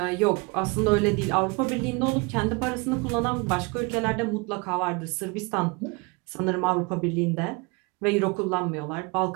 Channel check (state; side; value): quieter; left; 28.0 dB